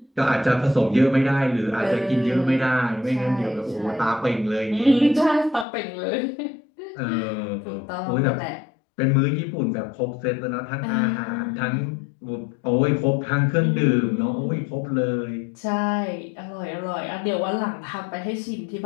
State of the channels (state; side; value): drops out; right; at 5.7 s